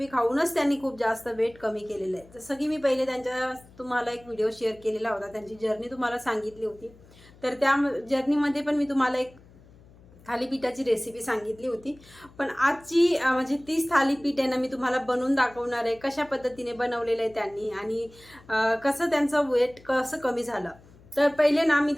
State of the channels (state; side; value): noise; left; hum, 25 dB below the sound